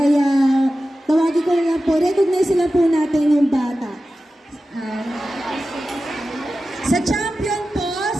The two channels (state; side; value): normal; both; correlation 0.94